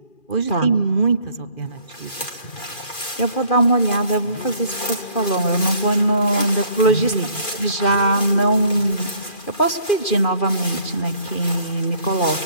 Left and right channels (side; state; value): right; late; 2.4 ms